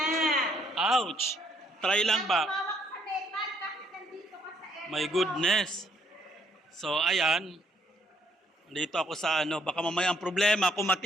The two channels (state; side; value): normal; both; correlation 0.69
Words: Ouch! Try lang ba? Tumawak sa metal kahit nandito ka sa area My mo. goodness. So ayan. Dito ako sa ano, baka mamaya ang problema, kung